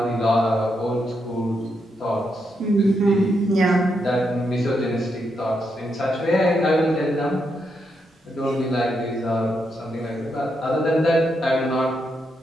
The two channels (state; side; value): normal; both; correlation 0.81